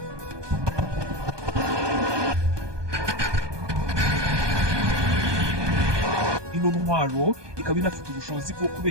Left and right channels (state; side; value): late; left; 1.2 ms